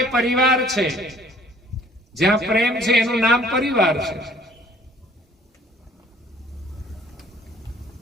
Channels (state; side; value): normal; both; correlation 0.56